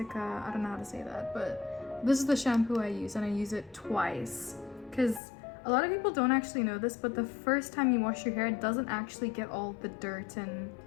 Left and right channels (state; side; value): drops out; right; at 5.2 s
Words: I don't know how to say that, but this is the shampoo I use, and I use it twice. Because a lot of people don't actually know this, but the first time you wash your hair, it doesn't actually get all the dirt and